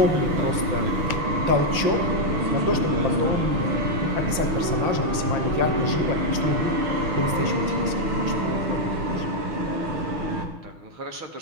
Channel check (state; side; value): late; left; 5.9 ms